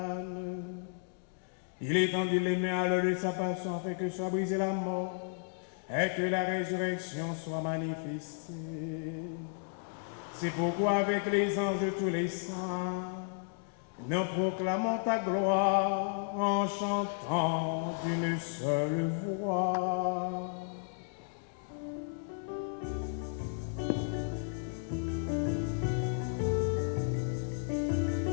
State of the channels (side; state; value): right; silent; digital silence